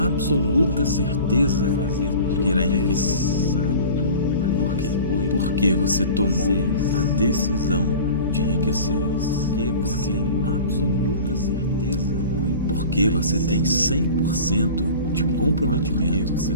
certeza de que irá enriquecer. Por quê? Porque você tomou a decisão de enriquecer. Porque você tem absoluta certeza. Porque você tem 100% de comprometimento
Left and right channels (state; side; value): inverted; both; correlation -0.39